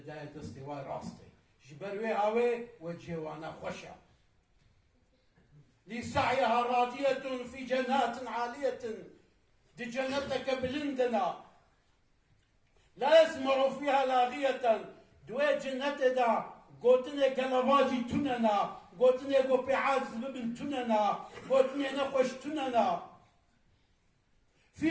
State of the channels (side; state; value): both; identical; correlation 1.00